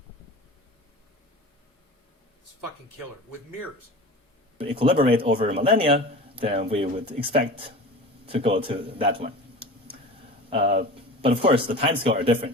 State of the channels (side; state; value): both; normal; correlation 0.35